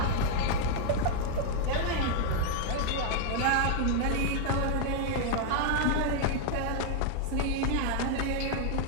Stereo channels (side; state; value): both; different; correlation 0.00